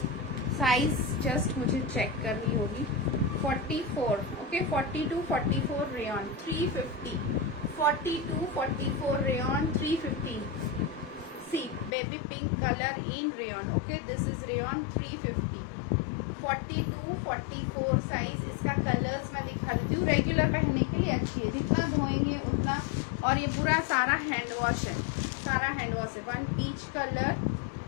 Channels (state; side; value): drops out; right; at 11.9 s